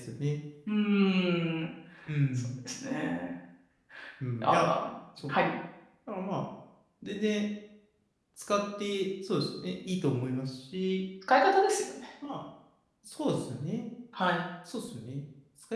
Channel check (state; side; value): identical; both; correlation 1.00